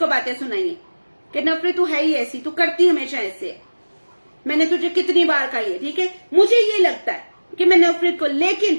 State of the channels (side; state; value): both; inverted; correlation -1.00